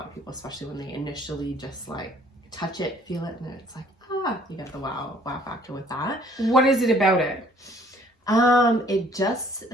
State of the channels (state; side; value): normal; both; correlation 0.58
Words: of people, especially when they initially just like touch it, feel it, and then it's like, you get the wow factor with that. What is it about it? It just